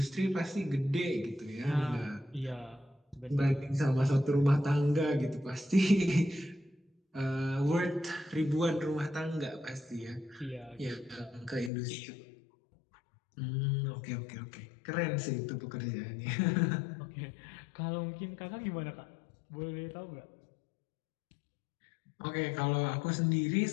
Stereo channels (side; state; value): right; drops out; at 11.7 s